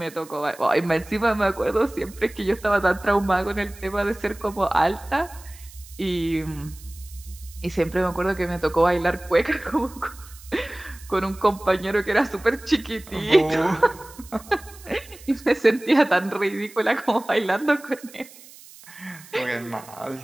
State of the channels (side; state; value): right; noise; hiss, 20 dB below the sound